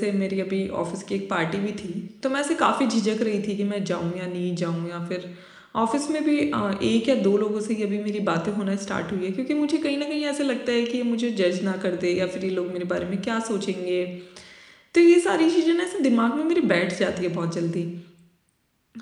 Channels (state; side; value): identical; both; correlation 1.00